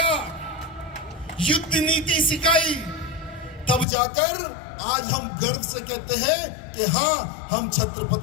युद्ध नीति सिखाई। तब जाकर आज हम गर्व से कहते हैं कि हाँ, हम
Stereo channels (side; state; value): right; drops out; at 3.9 s